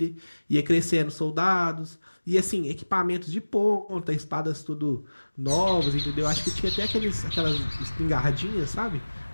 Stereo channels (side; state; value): both; inverted; correlation -1.00